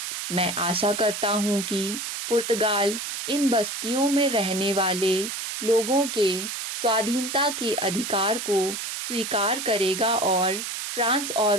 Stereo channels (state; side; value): noise; right; hiss, 5 dB below the sound